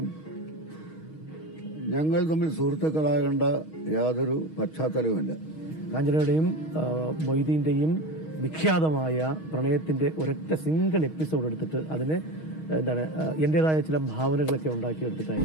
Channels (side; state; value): right; late; 6.4 ms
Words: ഞങ്ങൾ തമ്മിൽ സുഹൃത്തുക്കളാകേണ്ട യാതൊരു പശ്ചാത്തലവുമില്ല. കാഞ്ചനയുടെയും മൊയ്തീൻ്റെയും വിഖ്യാതമായ പ്രണയത്തിൻ്റെ ഒരൊറ്റ സിംഗിൾ എപ്പിസോഡ് എടുത്തിട്ട് അതിന് എൻ്റെതായ ചില ഭാവനകളൊക്കെ